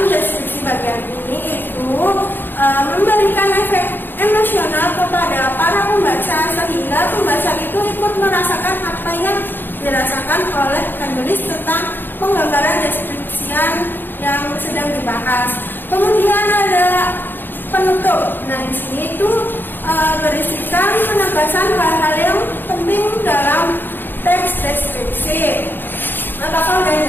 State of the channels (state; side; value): late; right; 0.095 ms